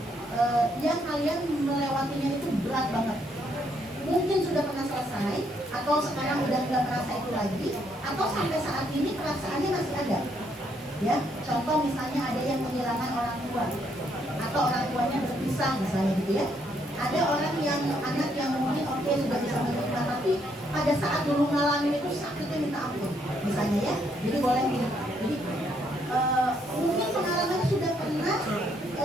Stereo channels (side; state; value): both; normal; correlation 0.72